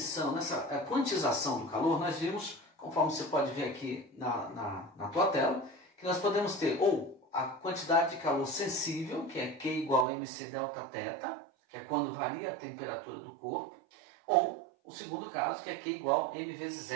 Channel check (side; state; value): left; drops out; at 10.1 s